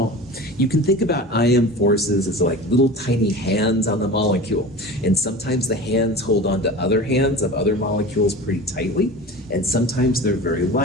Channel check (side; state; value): both; normal; correlation 0.34